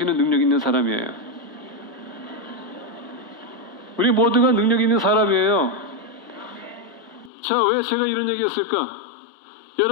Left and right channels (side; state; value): right; drops out; at 7.3 s